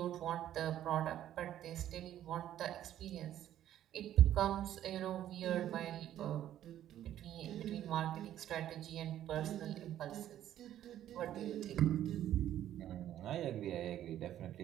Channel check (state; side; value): quieter; left; 11.8 dB